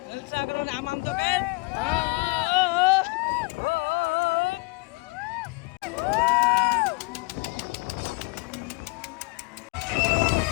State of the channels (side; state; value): right; quieter; 28.0 dB